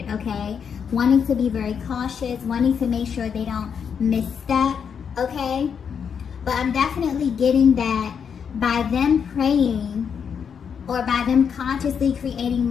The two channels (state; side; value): quieter; right; 7.1 dB